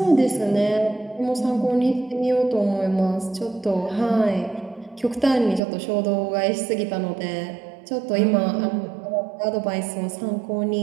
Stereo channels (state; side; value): drops out; left; at 5.6 s